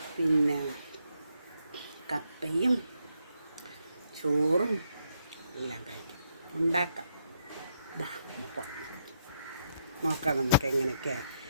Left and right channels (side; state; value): both; inverted; correlation -0.77